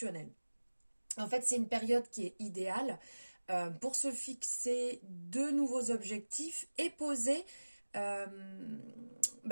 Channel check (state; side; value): inverted; both; correlation -1.00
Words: En fait, c'est une période qui est idéale pour se fixer de nouveaux objectifs et euh,